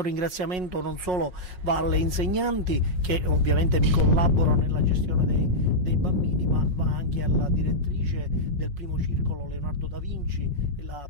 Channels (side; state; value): left; late; 5.5 ms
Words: ringraziamento non solo va alle insegnanti, che ovviamente mi collaborano nella gestione dei bambini, ma va anche alla direttrice del primo circolo Leonardo da Vinci e la